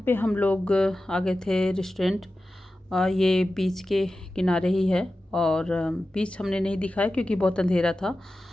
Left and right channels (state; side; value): normal; both; correlation 0.94